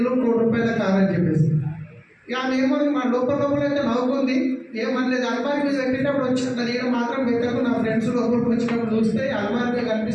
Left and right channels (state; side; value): identical; both; correlation 1.00